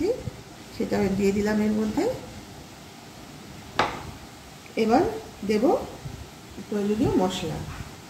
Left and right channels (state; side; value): identical; both; correlation 1.00